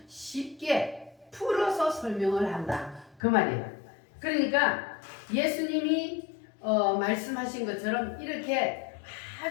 쉽게 풀어서 설명을 한다. 그 말이에요. 그러니까 예수님이 말씀하신 것처럼 이렇게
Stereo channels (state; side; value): drops out; right; at 3.2 s